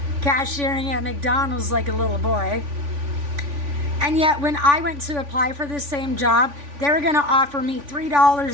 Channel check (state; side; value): late; left; 3.5 ms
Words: cashiering at McDonald's like a little boy. And yet when I went to apply for the same job, they were going to offer me